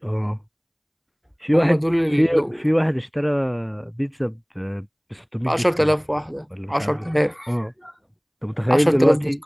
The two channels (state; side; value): identical; both; correlation 1.00